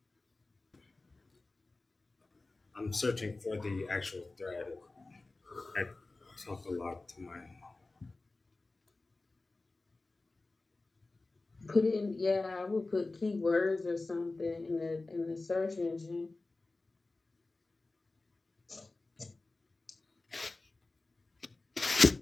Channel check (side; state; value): right; quieter; 3.3 dB